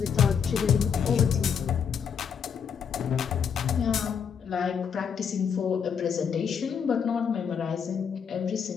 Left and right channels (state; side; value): quieter; right; 7.1 dB